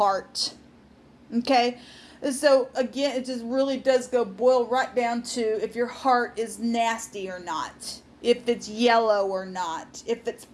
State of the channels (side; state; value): both; identical; correlation 1.00